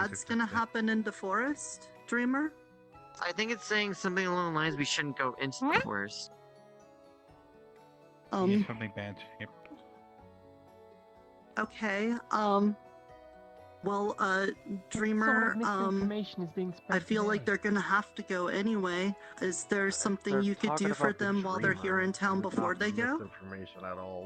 gonna happen in the forest, Dreamer? I think it's saying something along the lines we shouldn't go into the forest. Something bad. Yep. Okay, well, Dreamer, I feel like they're gonna have to go anyway. Is there something you could do for them while they're here in town before they go? Information at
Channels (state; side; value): identical; both; correlation 1.00